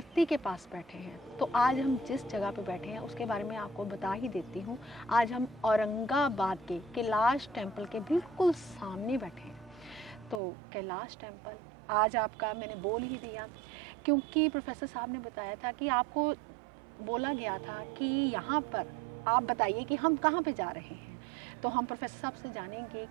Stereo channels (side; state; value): left; drops out; at 10.4 s